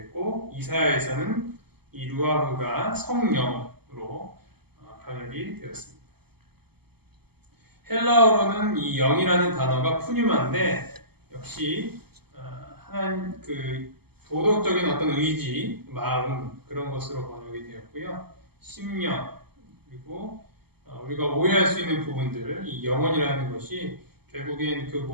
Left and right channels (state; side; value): late; left; 0.96 ms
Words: 이사야에서는 이 루아흐가 성령으로 번역이 되었습니다. 헬라어로는 이 영이라는 단어가 푸뉴마인데 역시 하나님 그 도덕적인 어떤 의지, 마음 그런 것으로 번역이 되었고요. 심령 그리고 우리가 오해할 수 있는 부분들, 이 영혼이라는 것이 결국엔 그